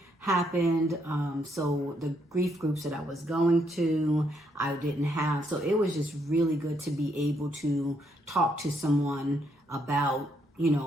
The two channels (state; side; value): normal; both; correlation 0.74